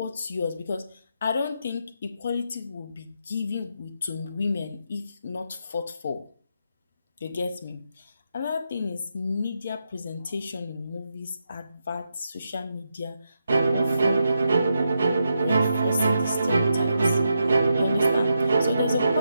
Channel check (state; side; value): inverted; both; correlation -0.84